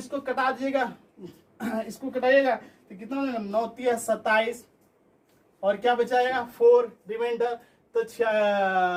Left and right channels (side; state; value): both; identical; correlation 1.00